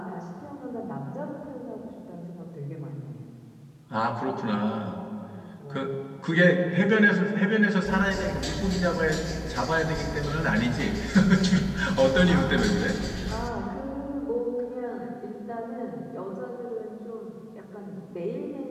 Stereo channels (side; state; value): both; identical; correlation 1.00